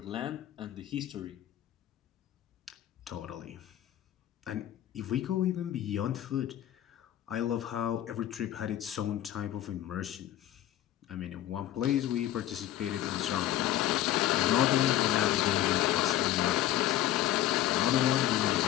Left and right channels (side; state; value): right; quieter; 13.0 dB